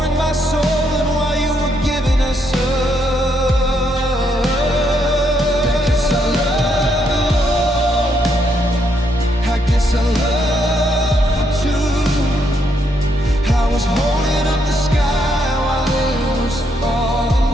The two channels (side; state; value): both; normal; correlation 0.76